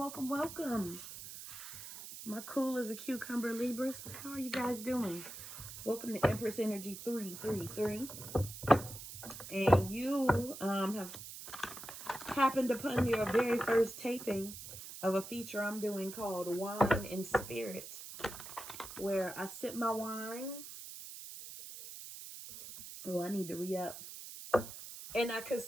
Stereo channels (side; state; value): right; noise; hiss, 11 dB below the sound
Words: welcome. My cool as a cucumber Libras. How are you guys doing? Welcome to Empress Energy 333. And you have happened upon your very first taping of a feature I'm doing called Wine and Spirit, where I sip my wine. Oh, I need to re-up. And I